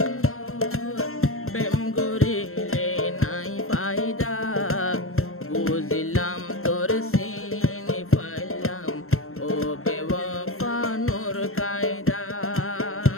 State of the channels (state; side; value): late; right; 0.62 ms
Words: প্রেম করিলে নাই ফায়দা বুঝিলাম তোর চিনি পাইলাম ও বেওয়াফা নূর কায়দা